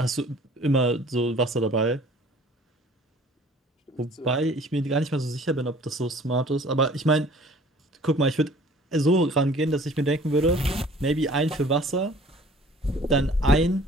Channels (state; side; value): normal; both; correlation 0.51